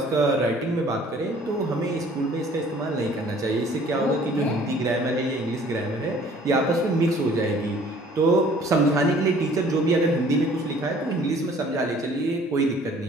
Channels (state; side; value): normal; both; correlation 0.54